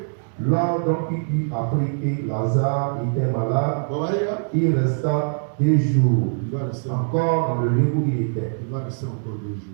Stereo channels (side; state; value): left; silent; 64 dB below the other